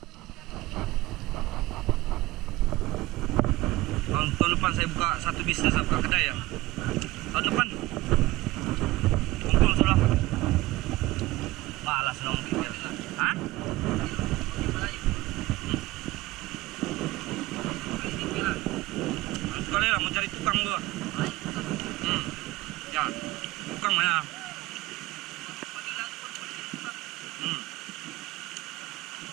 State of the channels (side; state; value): left; quieter; 18.6 dB